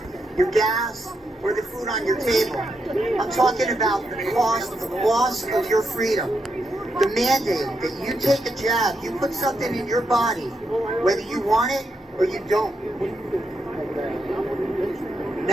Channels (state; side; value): normal; both; correlation 0.82